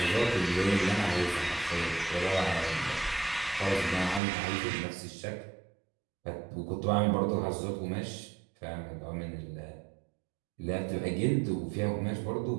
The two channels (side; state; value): left; drops out; at 4.2 s